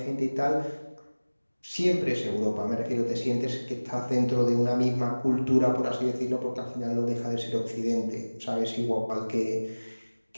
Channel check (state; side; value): inverted; both; correlation -1.00